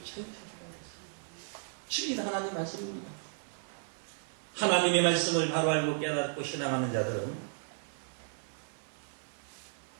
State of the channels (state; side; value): silent; left; 55 dB below the other